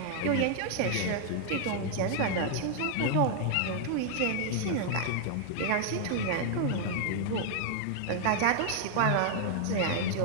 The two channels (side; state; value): both; different; correlation 0.00